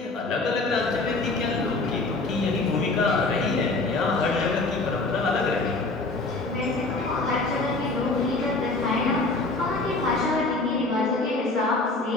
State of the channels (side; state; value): right; quieter; 3.3 dB